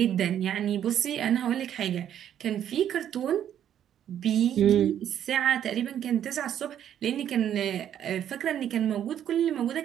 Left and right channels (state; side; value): quieter; left; 10.1 dB